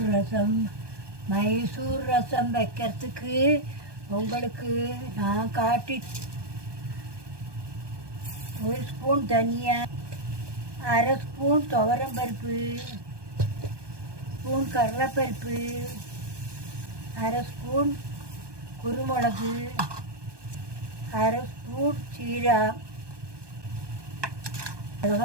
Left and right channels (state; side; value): late; left; 1.2 ms